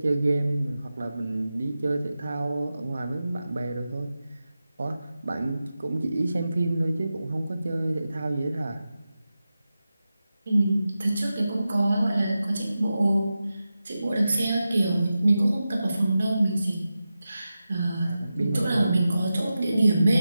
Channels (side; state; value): both; inverted; correlation -0.92